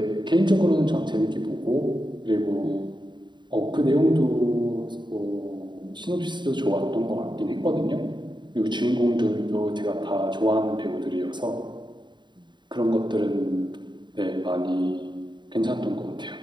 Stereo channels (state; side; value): late; left; 0.22 ms